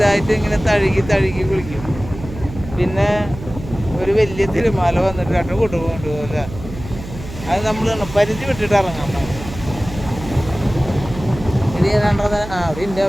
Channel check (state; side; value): noise; right; hum, 12 dB below the sound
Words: ഇങ്ങനെ തഴുകി വിളിക്കും. പിന്നെ ഒരു വലിയ തിരുമാല വന്നിട്ട് രണ്ട് കൊണ്ടുപോകില്ല. അത് നമ്മൾ പരിധി വിട്ടിട്ട് ഇറങ്ങാൻ പാടില്ല. ഇത് ഏതാണ്ടത്